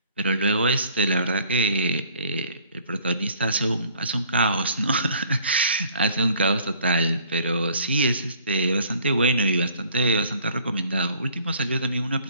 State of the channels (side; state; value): both; inverted; correlation -0.56